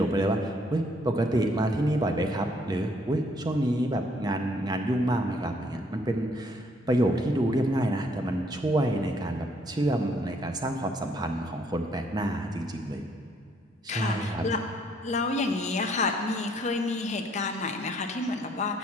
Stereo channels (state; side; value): normal; both; correlation 0.67